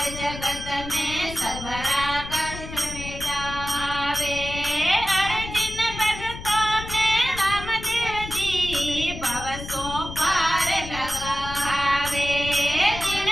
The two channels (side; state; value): left; noise; rumble, 10 dB below the sound